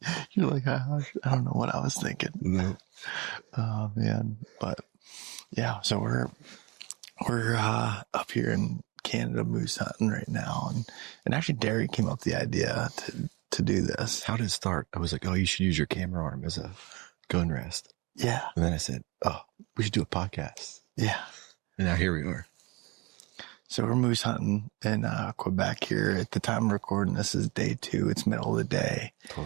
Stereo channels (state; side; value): quieter; left; 25.5 dB